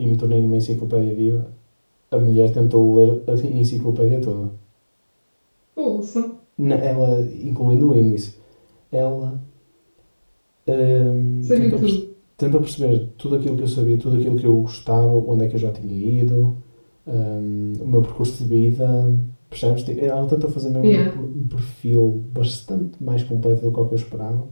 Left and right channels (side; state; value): both; inverted; correlation -1.00